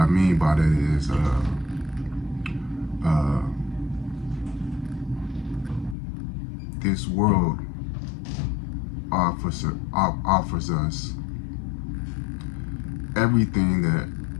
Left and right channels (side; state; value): right; drops out; at 6.0 s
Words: mean by that is this world offers us everything that